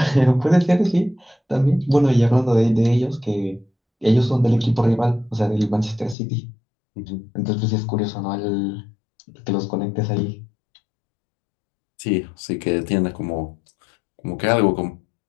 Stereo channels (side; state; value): right; drops out; at 6.2 s